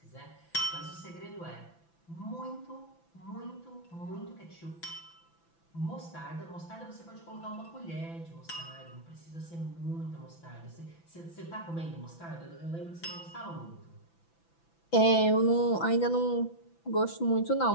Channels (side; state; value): right; late; 5.9 ms